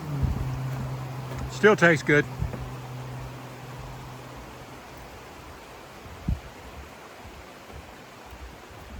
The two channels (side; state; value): both; identical; correlation 1.00